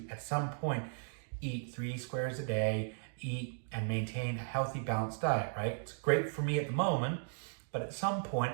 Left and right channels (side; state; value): left; silent; digital silence